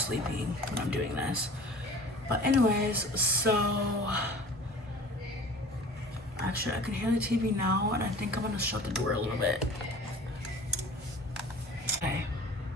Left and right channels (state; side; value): normal; both; correlation 0.42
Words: when I'm doing this. But anyways, so actually I can hear the TV now, and I think I'm gonna shut the door a little bit. Okay.